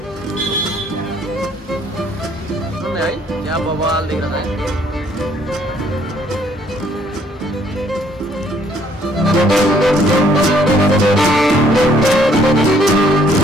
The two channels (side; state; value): both; normal; correlation 0.64